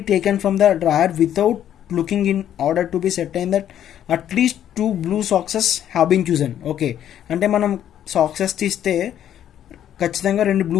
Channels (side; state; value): right; quieter; 10.6 dB